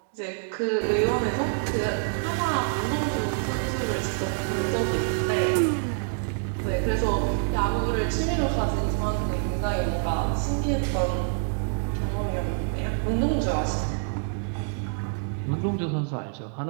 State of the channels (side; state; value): left; silent; digital silence